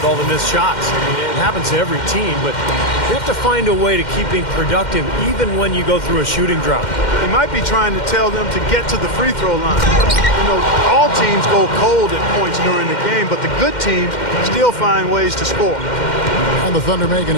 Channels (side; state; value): right; late; 2.1 ms